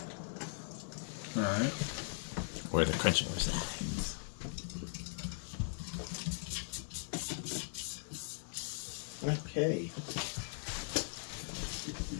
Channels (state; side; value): silent; right; digital silence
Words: All right. Where the crunching resides. Okay.